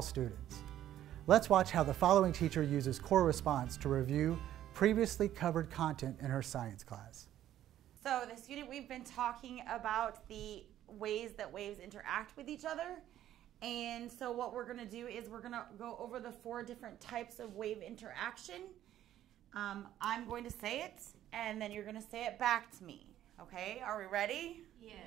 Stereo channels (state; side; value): quieter; left; 12.2 dB